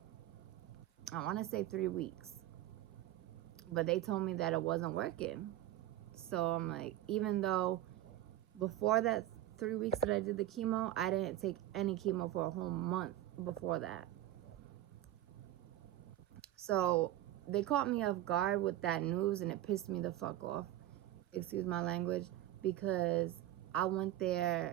I want to say 3 weeks, but they told me that it wasn't working. So I'm like, even though before that 3 weeks that I did the chemo, I didn't take any chemo for a whole month before that. So they caught me off guard with that news, and it pissed me the fuck off. Excuse my language, because I went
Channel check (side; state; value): left; quieter; 13.8 dB